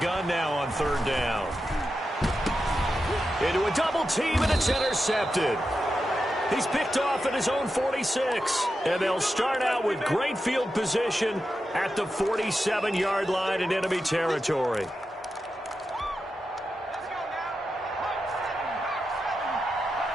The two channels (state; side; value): normal; both; correlation 0.89